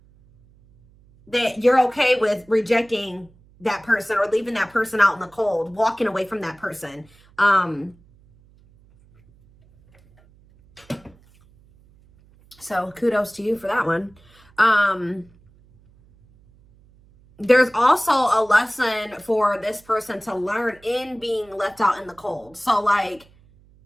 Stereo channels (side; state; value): right; noise; hum, 29 dB below the sound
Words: that you're okay with rejecting that person or leaving that person out in the cold, walking away from that person. So kudos to you for that one. There's also a lesson for this person to learn in being left out in the cold. So like